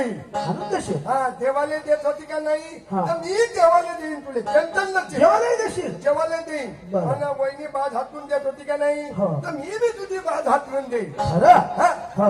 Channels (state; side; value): identical; both; correlation 1.00